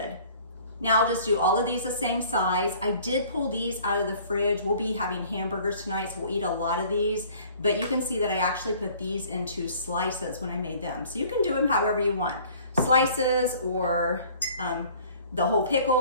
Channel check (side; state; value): both; inverted; correlation -0.52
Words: Now I'll just do all of these the same size. I did pull these out of the fridge. We'll be having hamburgers tonight, so we'll eat a lot of these. But you can see that I actually put these into slices when I made them. So you can do them however you want. Slices or the whole pickle